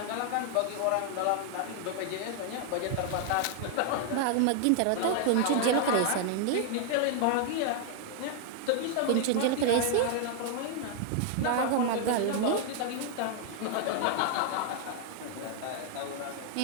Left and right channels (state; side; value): different; both; correlation 0.00